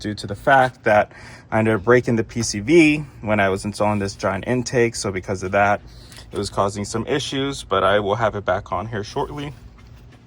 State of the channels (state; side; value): identical; both; correlation 1.00